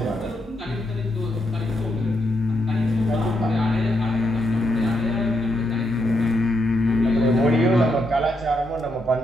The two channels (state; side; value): normal; both; correlation 0.80